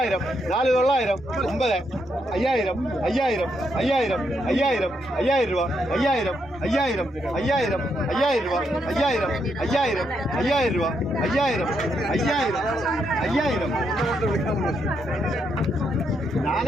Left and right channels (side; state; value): both; normal; correlation 0.78